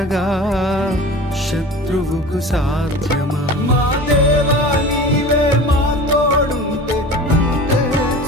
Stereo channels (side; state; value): both; normal; correlation 0.37